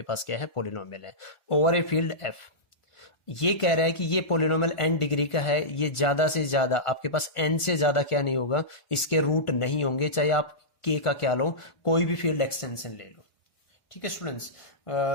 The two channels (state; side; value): late; right; 1.5 ms